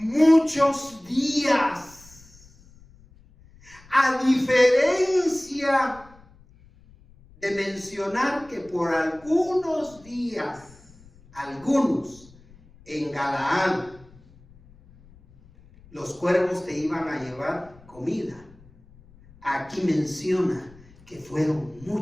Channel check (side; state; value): left; noise; rumble, 25 dB below the sound